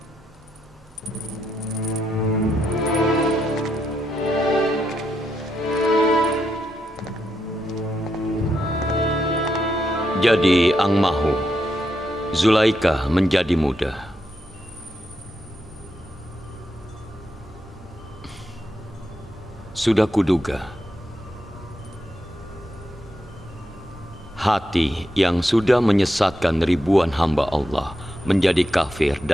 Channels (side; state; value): both; normal; correlation 0.82